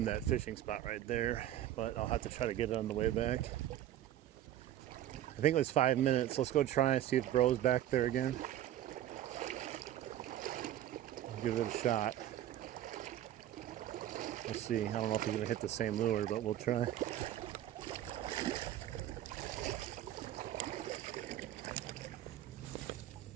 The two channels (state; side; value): quieter; left; 12.5 dB